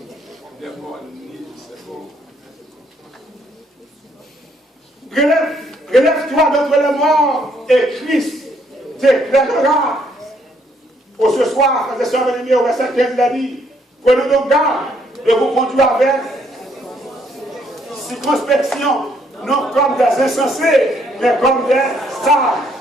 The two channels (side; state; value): both; normal; correlation 0.69